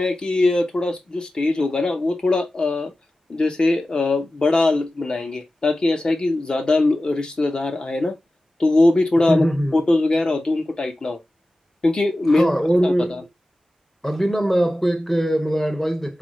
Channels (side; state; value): both; normal; correlation 0.95